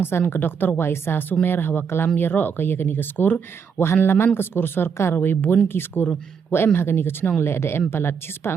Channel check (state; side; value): quieter; left; 6.5 dB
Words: ke Dr. Waisa Sumer hawa kalam yero ke ya kini keskur wahan laman keskur sorkar we bun ki skur wa em hagani kechnong le ada em palat cispa